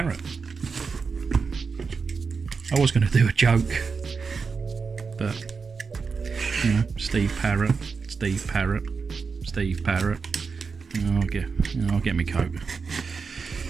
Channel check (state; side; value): quieter; left; 5.1 dB